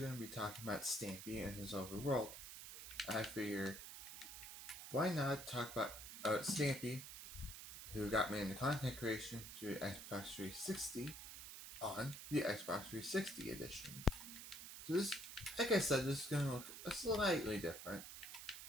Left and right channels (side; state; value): right; noise; hiss, 10 dB below the sound